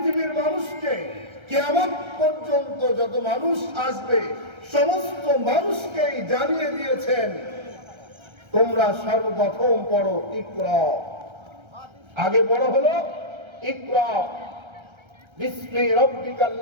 মানুষকে, কিয়ামত পর্যন্ত যত মানুষ আসবে সমস্ত মানুষকেই জানিয়ে দিয়েছেন তোমরা সর্বপ্রথম পড়ো ইকরা। আগে পড়ো হলো ইকরা বিসমি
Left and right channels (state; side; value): late; left; 1.3 ms